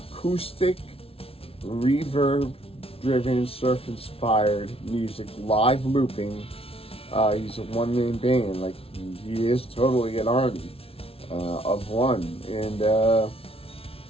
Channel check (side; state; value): right; late; 0.27 ms